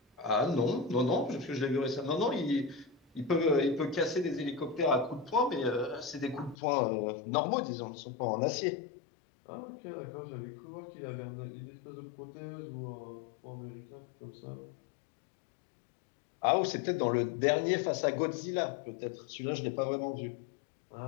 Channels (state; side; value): drops out; right; at 6.6 s